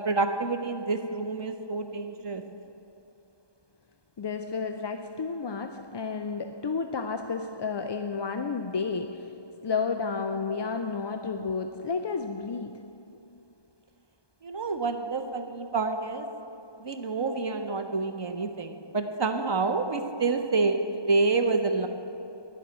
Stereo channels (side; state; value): right; late; 1.2 ms